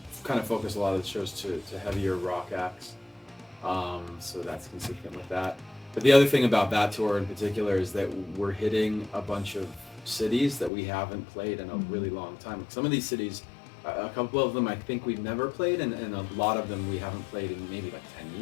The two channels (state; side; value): drops out; right; at 10.7 s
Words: kind of focus a lot of the shows to heavier rock acts. So that's consistent with that. But the other thing about that tour in particular is that we're hitting a bunch of cities that we haven't played in a really long time. Some of these cities, a couple of them I think we've never played, and a lot of them we haven't played in maybe like 10